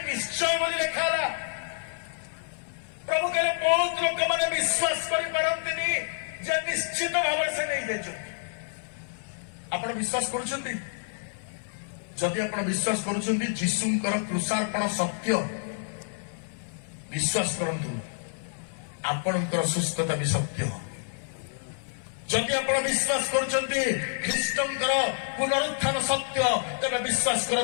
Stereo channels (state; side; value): silent; right; 59 dB below the other